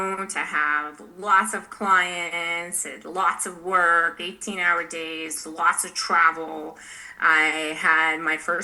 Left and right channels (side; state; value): both; identical; correlation 1.00